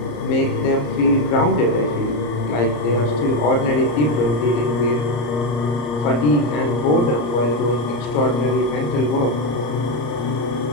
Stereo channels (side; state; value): right; late; 34 ms